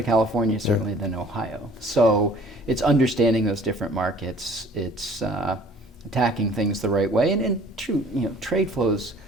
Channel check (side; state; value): both; normal; correlation 0.53